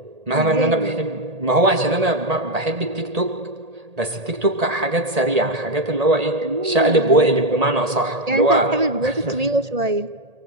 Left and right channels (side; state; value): left; late; 1.8 ms